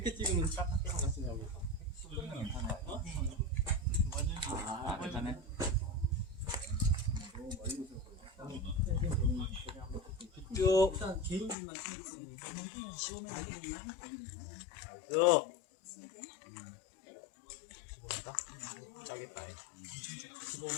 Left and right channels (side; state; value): right; drops out; at 11.6 s